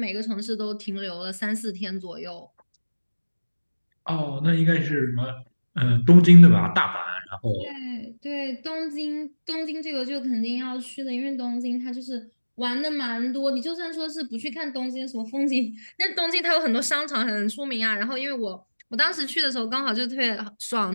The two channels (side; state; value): both; inverted; correlation -1.00